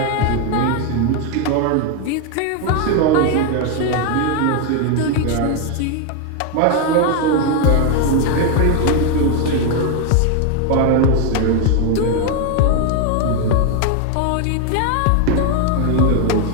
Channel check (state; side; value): different; both; correlation 0.01